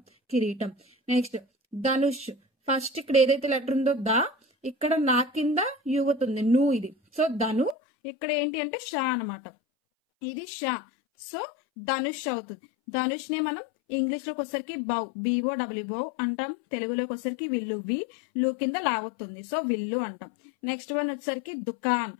కిరీటం. నెక్స్ట్ ధనుష్, ఫస్ట్ ఇక్కడ ఏదైతే లెటర్ ఉందో దా, ఇక్కడ నా కింద యువతుంది, ను, ఇది, సో ధను. ఇక్కడ ఏంటి అంటే షా అనమాట, ఇది షా, సో ధనుష్ అవుతుంది. ధనుష్ ని మనం ఇంగ్లీష్ లోకి వచ్చేసరికి BOW అంటాం. తెలుగులోకి వచ్చేసరికి విల్లు, లు కింద లావతుంది, సో విల్లు అంటాం. నెక్స్ట్ వన్ వచ్చేసరికి దుకాన్,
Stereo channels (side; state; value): right; drops out; at 7.8 s